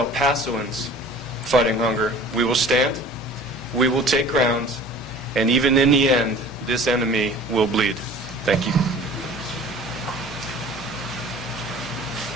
Pasoans fighting hunger, we will stand, we will take ground, and even in the end, this enemy will bleed. Thank you.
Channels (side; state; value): both; normal; correlation 0.45